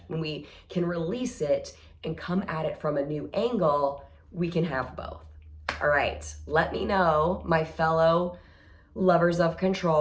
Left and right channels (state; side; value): identical; both; correlation 1.00